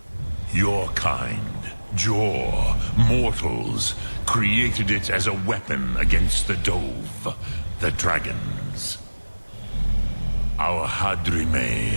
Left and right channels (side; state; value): both; inverted; correlation -1.00